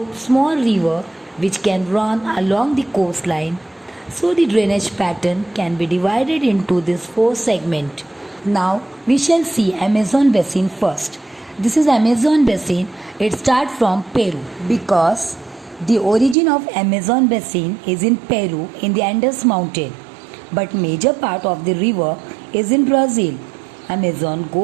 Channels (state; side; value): drops out; left; at 16.4 s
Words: small river which can run along the coastline. So the drainage pattern can be divided into these four segments. Now we shall see Amazon basin first. This is Amazon basin. It starts from Peru because the origin of Amazon basin is in Peru in the Andes mountain, but major part of the river is in Brazil. Amazon